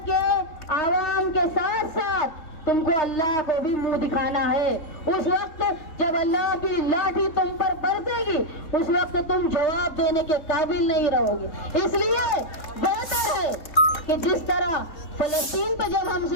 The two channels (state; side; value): late; right; 3.7 ms